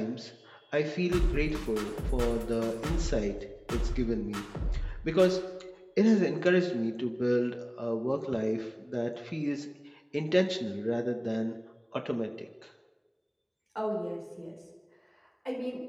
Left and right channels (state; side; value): identical; both; correlation 1.00